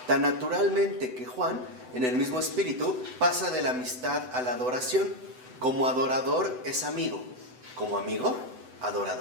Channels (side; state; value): left; late; 8.0 ms